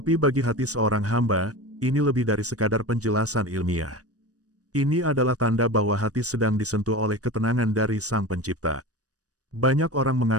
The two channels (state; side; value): late; left; 0.66 ms